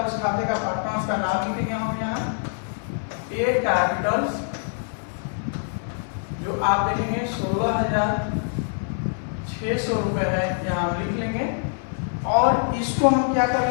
उस खाते का पार्टनर्स का नाम लिखेंगे हम यहाँ ए कैपिटल्स, जो आप देखेंगे 16,600 रुपए है, यहाँ हम लिख लेंगे, और इसको हम क्या कर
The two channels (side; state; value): right; silent; 61 dB below the other